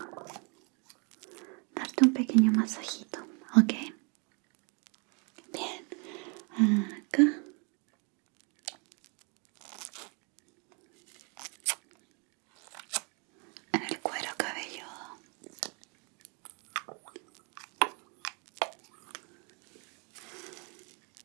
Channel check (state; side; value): quieter; left; 34.0 dB